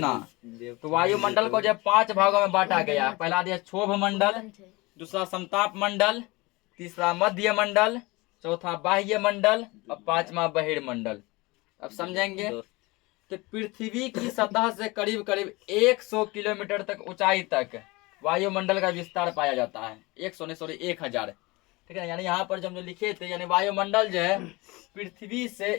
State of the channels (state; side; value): quieter; right; 23.5 dB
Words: तो वायुमंडल को जब 5 भागों में बांटा गया, पहला दिया क्षोभ मंडल, दूसरा समताप मंडल, तीसरा मध्य मंडल, चौथा बाह्य मंडल और 5वां बहिर्मंडल। अब समझेंगे। तो पृथ्वी की सतह से करीब करीब 100 किलोमीटर तक ऊंचाई तक वायुमंडल का विस्तार पाया जाता है। 100 नहीं सॉरी 1000, ठीक है। यानी यहाँ पर जब जो लिखे थे, यानी वायुमंडल जो है पृथ्वी से